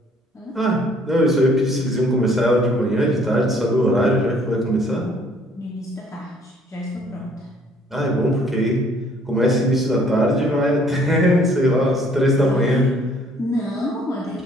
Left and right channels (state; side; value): normal; both; correlation 0.61